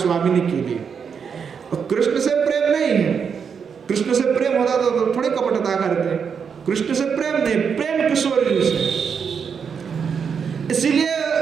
के लिए। और कृष्ण से प्रेम नहीं है, कृष्ण से प्रेम होता तो थोड़ी कपटता करते, कृष्ण से प्रेम नहीं, प्रेम किशोर जी से। इसीलिए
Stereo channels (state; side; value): quieter; left; 6.6 dB